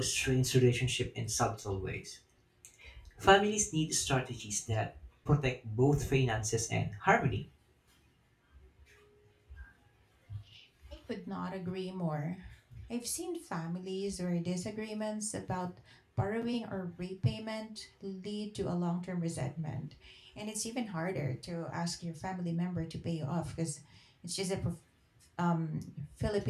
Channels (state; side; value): identical; both; correlation 1.00